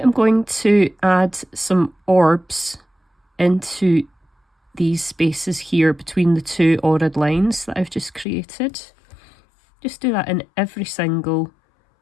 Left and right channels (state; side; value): drops out; right; at 8.2 s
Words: going to add some orbs into these spaces here between the two ordered lines that I've just created. Just do that in every single